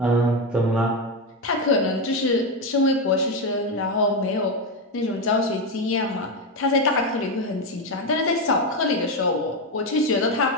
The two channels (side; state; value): both; normal; correlation 0.10